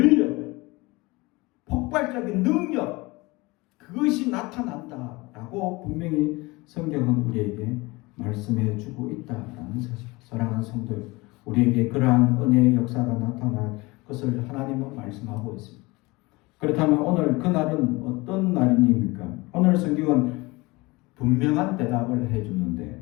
폭발적인 능력, 그것이 나타난다라고 분명히 성경은 우리에게 말씀해 주고 있다라는 사실. 사랑하는 성도, 우리에게 그러한 은혜의 역사가 나타날 것을 하나님은 말씀하고 있습니다. 그렇다면 오늘 그날은 어떤 날입니까? 오늘 성경은 분명한 대답을 해주는데,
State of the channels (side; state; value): right; quieter; 23.3 dB